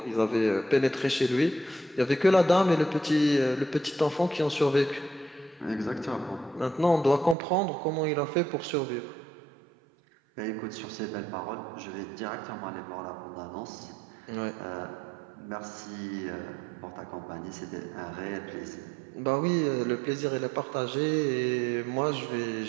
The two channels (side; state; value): left; drops out; at 7.4 s